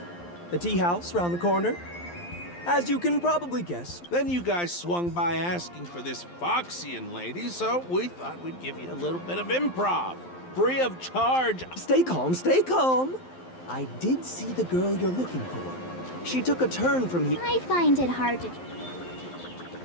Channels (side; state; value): right; late; 12 ms